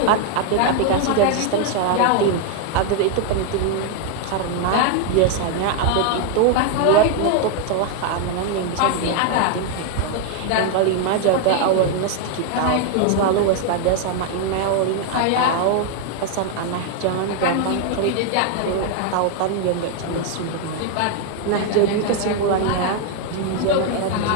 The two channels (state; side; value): different; both; correlation 0.00